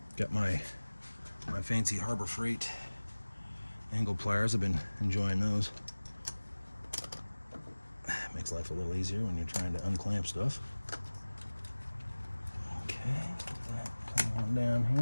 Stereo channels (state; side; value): inverted; both; correlation -1.00